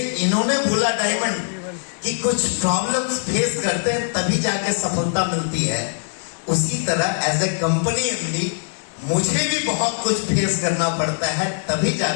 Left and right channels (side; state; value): right; silent; digital silence